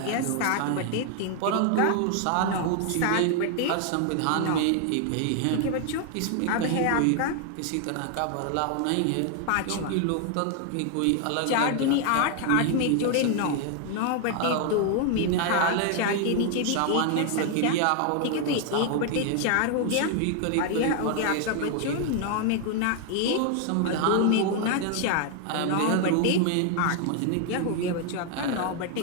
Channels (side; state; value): both; different; correlation 0.00